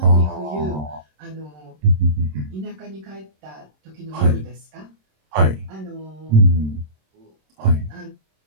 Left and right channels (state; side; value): late; left; 26 ms